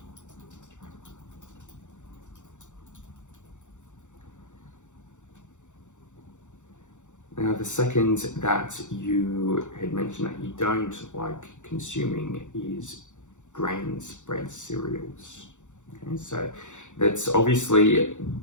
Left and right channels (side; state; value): right; late; 0.85 ms